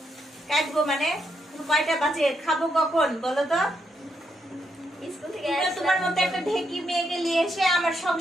কাটবো মানে কয়টা বাজে? খাবো কখন বলো তো? স্কুল থেকে তোমার মতো একটা ঢেকি মেয়েকে নিয়ে এসে আমার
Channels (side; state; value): both; normal; correlation 0.79